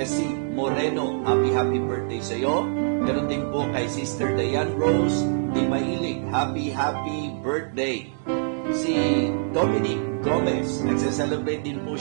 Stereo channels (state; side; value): silent; left; digital silence